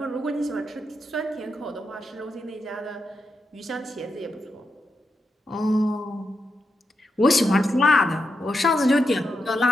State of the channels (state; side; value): normal; both; correlation 0.85